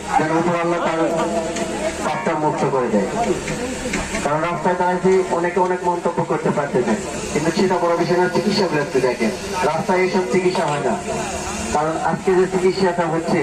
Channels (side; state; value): both; identical; correlation 1.00